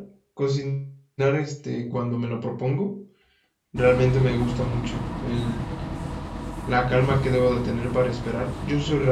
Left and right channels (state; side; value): identical; both; correlation 1.00